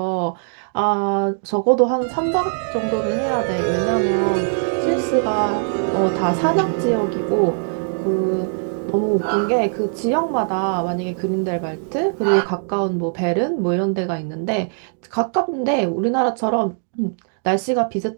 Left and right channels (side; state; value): left; silent; digital silence